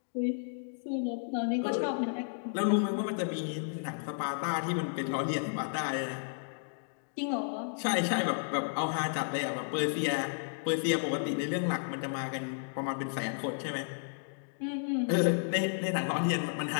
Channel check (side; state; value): right; silent; digital silence